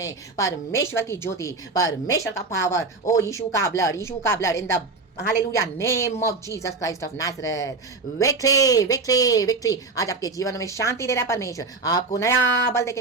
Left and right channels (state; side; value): quieter; left; 3.7 dB